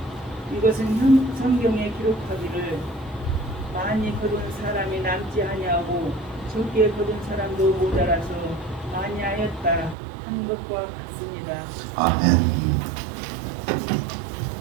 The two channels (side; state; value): left; drops out; at 10.0 s